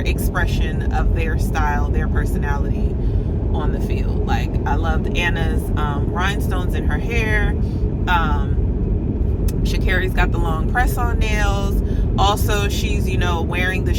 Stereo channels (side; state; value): both; identical; correlation 1.00